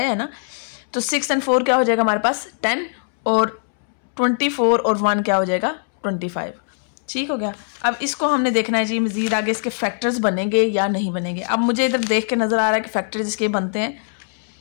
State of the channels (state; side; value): silent; right; 65 dB below the other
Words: है ना, तो 6 और 4 क्या हो जाएगा हमारे पास 10, और 24 और 1 क्या हो जाएगा 25, ठीक हो गया। अब इसको हमने देखना है जी मज़ीद आगे इसके फैक्टर्स बनेंगे या नहीं बनेंगे। अब मुझे इधर देख के नज़र आ रहा है कि फैक्टर्स इसके बनते हैं।